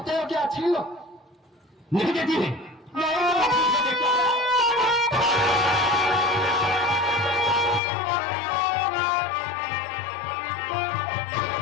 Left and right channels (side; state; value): right; drops out; at 7.8 s